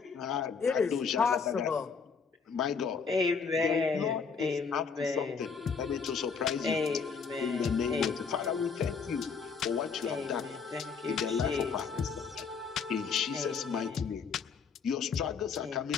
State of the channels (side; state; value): right; quieter; 5.7 dB